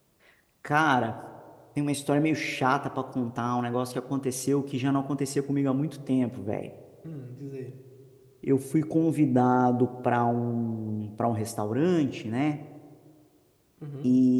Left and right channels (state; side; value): identical; both; correlation 1.00